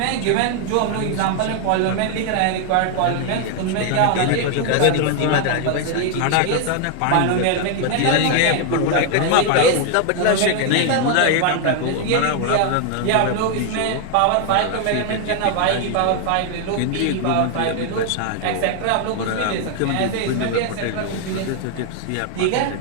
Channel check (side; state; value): both; different; correlation 0.00